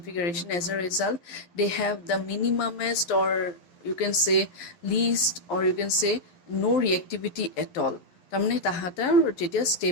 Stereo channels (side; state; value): right; late; 11 ms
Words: as a result they have the minimumest, or you can say least, or you can say no reactivity at all. তাৰমানে তাহাঁতৰ যেতিয়া